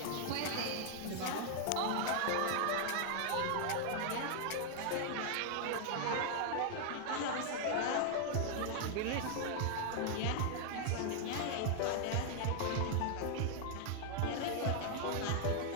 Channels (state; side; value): different; both; correlation 0.00